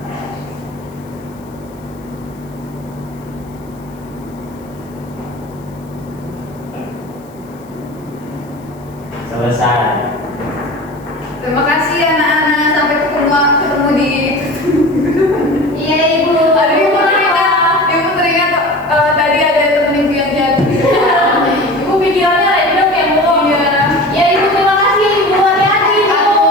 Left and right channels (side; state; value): left; noise; hiss, 30 dB below the sound